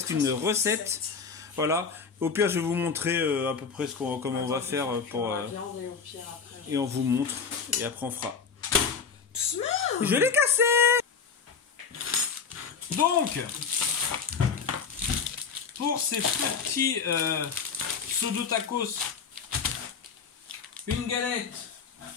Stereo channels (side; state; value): right; quieter; 5.8 dB